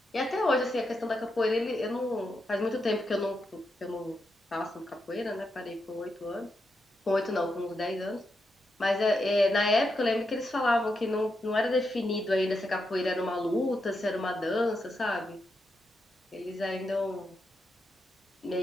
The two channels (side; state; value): both; normal; correlation 0.84